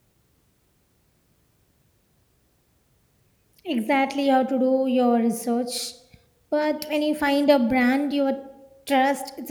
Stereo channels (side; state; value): both; identical; correlation 1.00